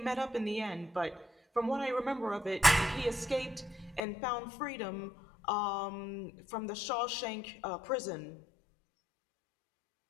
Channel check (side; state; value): right; drops out; at 4.0 s